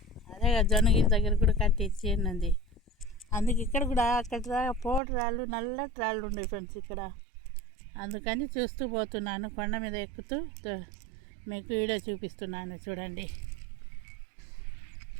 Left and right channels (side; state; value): left; drops out; at 5.0 s